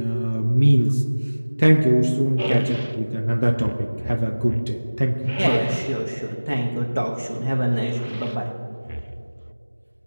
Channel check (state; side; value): inverted; both; correlation -1.00